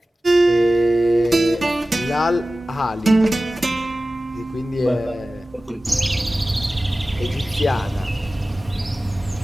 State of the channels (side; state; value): both; normal; correlation 0.96